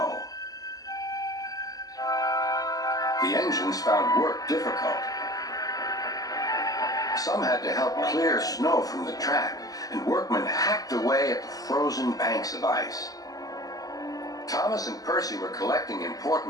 The engines found work difficult. Some had to help clear snow from the track, and workmen hacked away at the frozen banks of ice. Thomas and Percy were collecting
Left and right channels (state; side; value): late; right; 0.17 ms